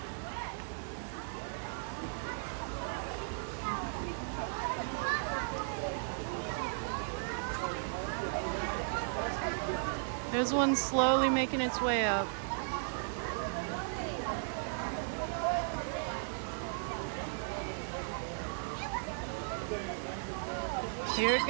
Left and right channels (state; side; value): silent; left; digital silence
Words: There's one slowly making its way up. Here it